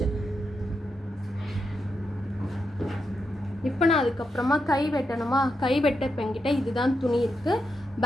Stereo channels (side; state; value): both; normal; correlation 0.85